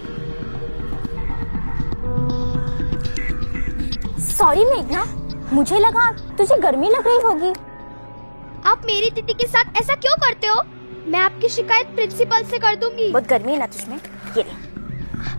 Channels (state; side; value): inverted; both; correlation -1.00